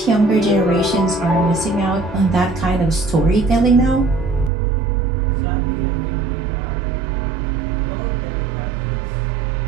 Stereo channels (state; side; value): drops out; left; at 4.5 s